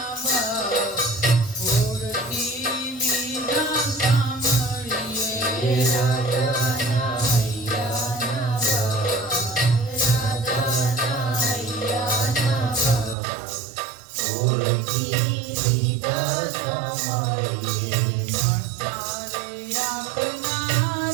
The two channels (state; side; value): drops out; left; at 13.2 s